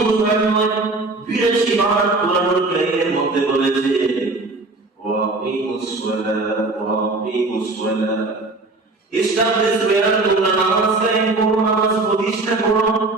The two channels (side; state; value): left; quieter; 3.2 dB